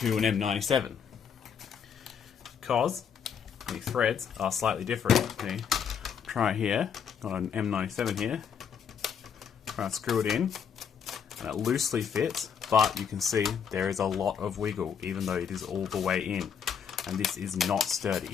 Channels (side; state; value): right; quieter; 7.4 dB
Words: an M97, because the threads are slightly different. Okay, try it here, got an M97 here, try to screw it in, and it loosely fits, but you can see there is a lot of wiggle even though it is all the way in, and this is not sturdy,